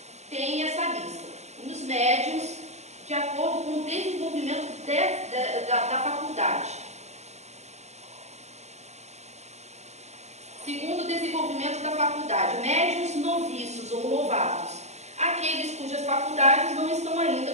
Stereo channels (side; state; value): left; late; 0.32 ms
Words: tem essa lista. Os médiuns, de acordo com o desenvolvimento da faculdade. Segundo o desenvolvimento da faculdade, médiuns noviços ou novatos, aqueles cujas faculdades não estão ainda